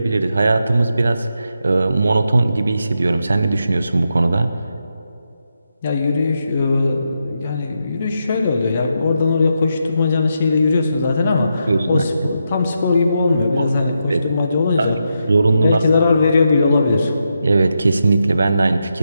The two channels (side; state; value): both; inverted; correlation -0.84